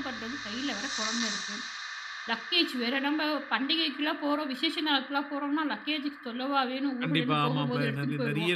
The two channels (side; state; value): both; identical; correlation 1.00